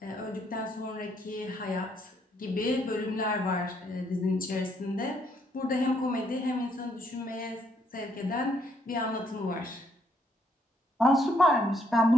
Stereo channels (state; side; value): normal; both; correlation 0.71